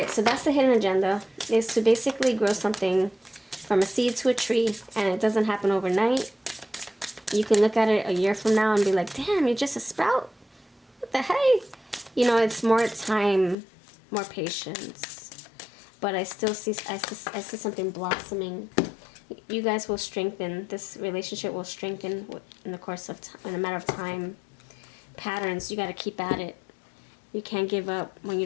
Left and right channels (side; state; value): right; drops out; at 13.6 s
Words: so that's the hidden agenda, is to basically grow something from a seed to a tree, and it doesn't happen overnight. You can look at it a year from now and be like, damn, you're just a sprout? What the hey? You know, it's more time, more patience. But I still see, I see something blossoming. You guys will strengthen. This relationship will strengthen in the course of time, in a matter of time. Patterns, you got to keep at it. You can't give up when you